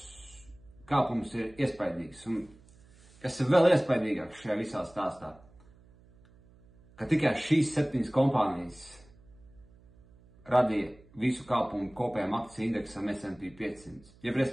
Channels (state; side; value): noise; right; hum, 26 dB below the sound